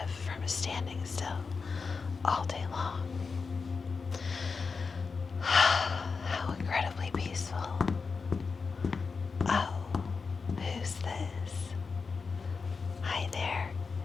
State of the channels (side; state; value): right; quieter; 4.9 dB